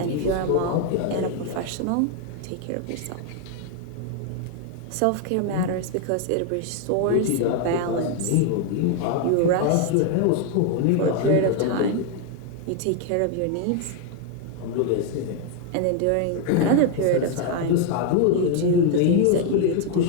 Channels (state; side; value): different; both; correlation 0.01